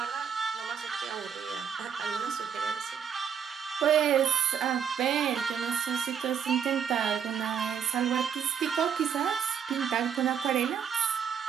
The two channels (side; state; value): left; quieter; 7.8 dB